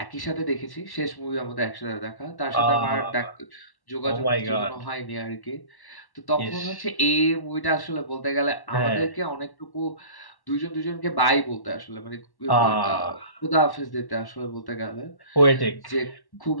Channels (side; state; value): right; late; 1.1 ms